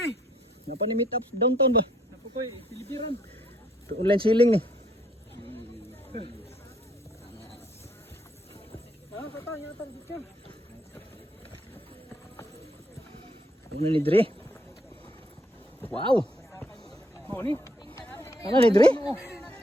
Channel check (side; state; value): both; normal; correlation 0.68